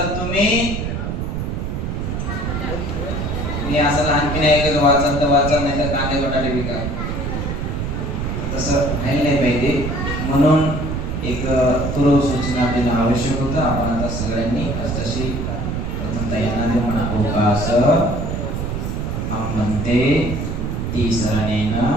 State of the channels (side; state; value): right; noise; rumble, 3 dB below the sound